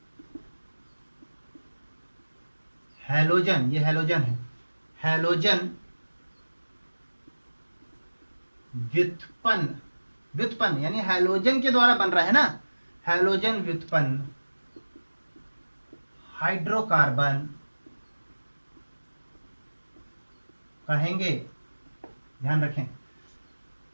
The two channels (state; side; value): inverted; both; correlation -1.00